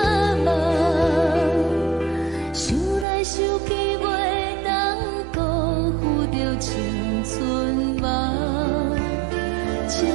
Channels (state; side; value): drops out; left; at 3.1 s